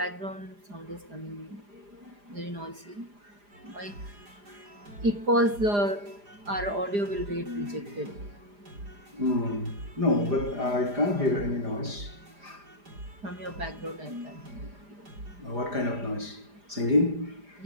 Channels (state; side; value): late; left; 4.9 ms